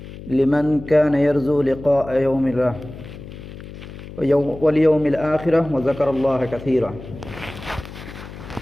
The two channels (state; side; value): noise; left; hum, 14 dB below the sound